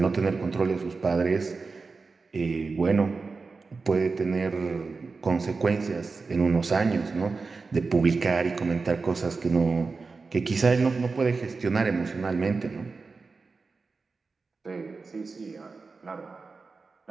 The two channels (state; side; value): quieter; left; 4.3 dB